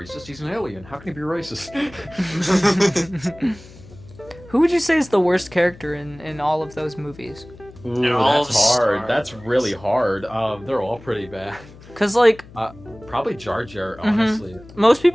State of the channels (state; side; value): noise; left; hum, 20 dB below the sound